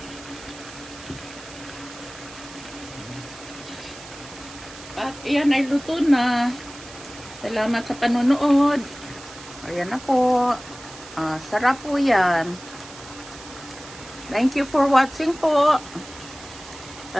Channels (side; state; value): right; noise; hiss, 16 dB below the sound